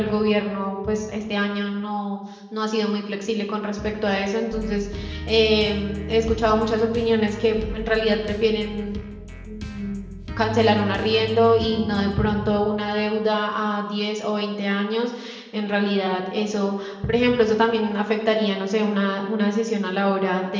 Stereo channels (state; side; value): identical; both; correlation 1.00